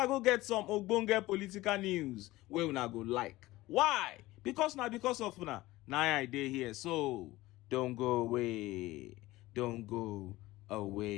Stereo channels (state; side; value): quieter; right; 18.3 dB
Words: go get some ogbonge political news where una go like. Why? Because now because of una. Now I dey here. So don't go away. Don't go